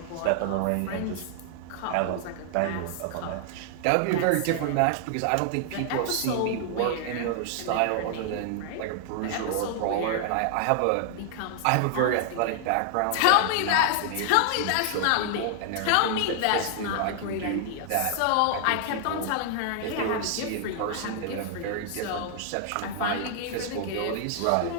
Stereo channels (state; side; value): different; both; correlation 0.00